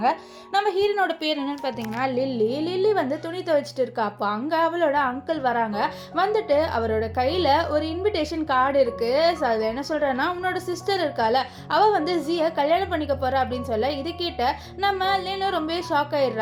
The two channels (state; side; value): identical; both; correlation 1.00